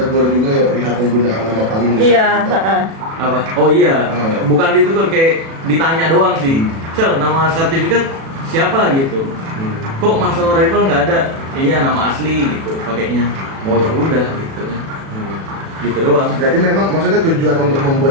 juga ya perihal penggunaan nama panggung. Iya. Apa? Oh iya, bukan ditegur, kayak ditanya doang sih. Sel, nama sertifikat siapa gitu? Kok Marcel Rival nggak ada? Iya, nama asli gitu pakainya. Oh ya udah gitu ya. Gitu doang. Berarti memang maksudnya tujuan untuk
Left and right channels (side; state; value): left; late; 36 ms